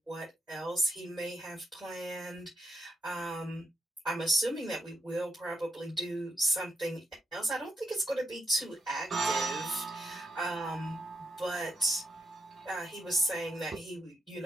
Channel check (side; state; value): both; normal; correlation 0.82